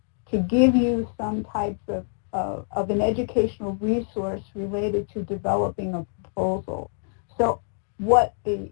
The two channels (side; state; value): right; silent; 61 dB below the other